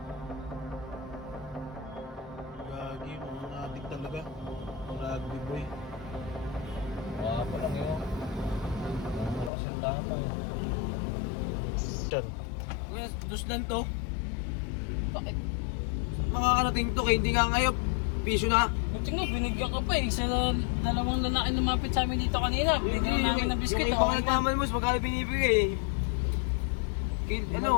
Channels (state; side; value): drops out; right; at 9.5 s